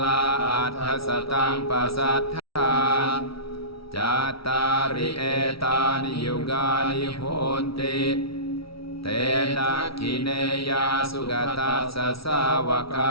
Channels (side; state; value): right; late; 0.75 ms